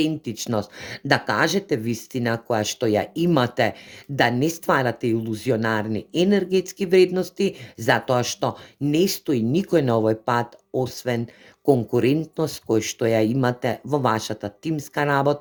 да кажете вистина која што ја имате, да не стварате илузионарни енергетски вредности, затоа што не стои никој на овој пат освен конкурентност кој што ја имате во вашата тимска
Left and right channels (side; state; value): both; identical; correlation 1.00